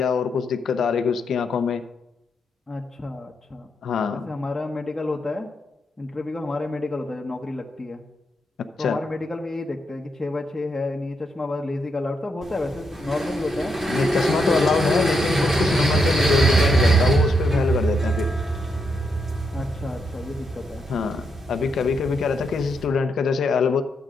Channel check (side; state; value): both; normal; correlation 0.81